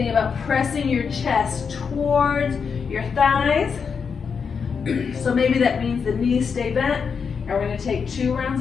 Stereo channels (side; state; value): right; quieter; 6.0 dB